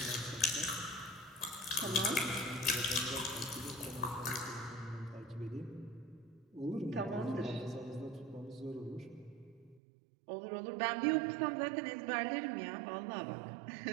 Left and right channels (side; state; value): left; drops out; at 9.8 s